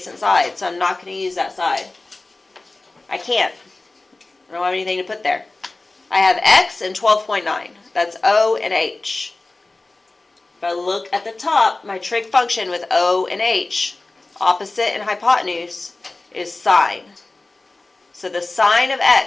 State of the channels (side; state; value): right; quieter; 3.2 dB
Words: side, so I'm not going to use that side. I can't. I don't have anything to put there. I have x and 12.9. That's O and H. If I look at the top, my trig function with O and H, opposite and hypotenuse, is sine. So the sine of